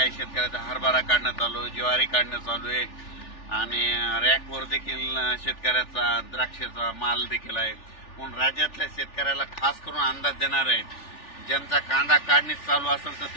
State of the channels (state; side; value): late; right; 3.4 ms